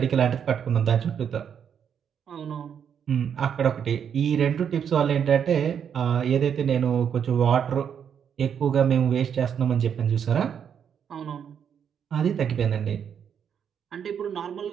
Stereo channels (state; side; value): quieter; left; 8.0 dB